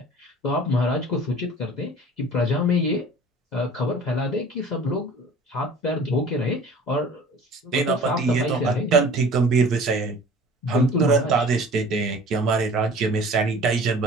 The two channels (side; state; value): both; normal; correlation 0.45